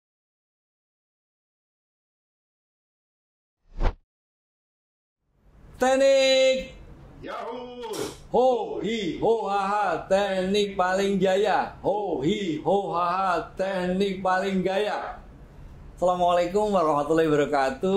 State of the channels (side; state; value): both; identical; correlation 1.00